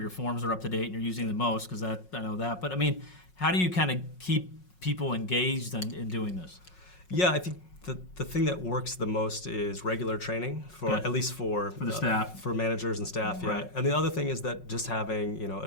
forms are up to date and you're using the most, because I know that. But I mean, how do you kind of keep people engaged in doing this? Yeah, I think the thing that works the most is regular training at least for the staff, for managers and staff. Yeah, right. And the other thing is that just having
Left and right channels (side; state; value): right; late; 5.5 ms